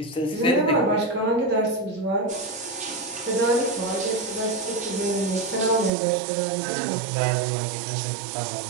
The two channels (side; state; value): left; drops out; at 5.9 s